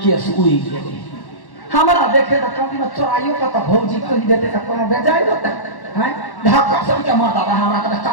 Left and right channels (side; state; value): right; late; 1.1 ms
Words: केस उई गेलै हमरा देखे त कभी में चोराइयो का त भौजी कहि देते त कोनो बेजाय देते हैं धक्का सब के मारदा हमरा का